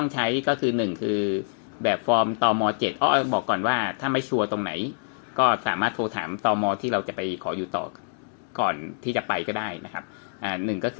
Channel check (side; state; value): right; silent; digital silence